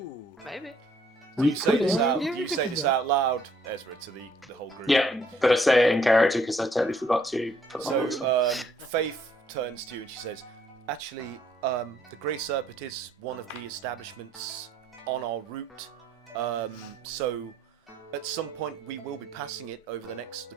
Maybe. Do you say this out loud, Ezra, to the whole group? Yeah, but I say it in character because I totally forgot to put my voice on. Faith turns to you and she says, actually, the Grey Serpent is one of the establishments on our route. So at some point we will be passing it over the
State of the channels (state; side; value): normal; both; correlation 0.65